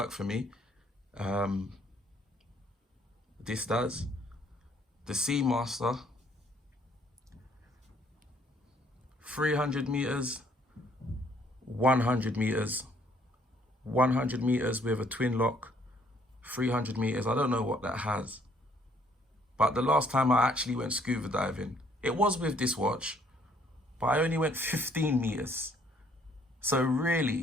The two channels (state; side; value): normal; both; correlation 0.64